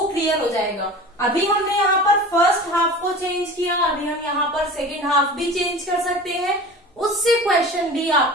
क्लियर हो जाएगा। अभी हमने यहाँ पर हाफ को चेंज किया, अभी हम यहाँ पर सेकेंड हाफ भी चेंज कर सकते हैं, उससे क्वेश्चन भी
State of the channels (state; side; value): normal; both; correlation 0.37